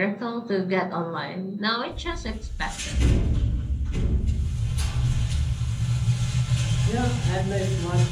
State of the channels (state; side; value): identical; both; correlation 1.00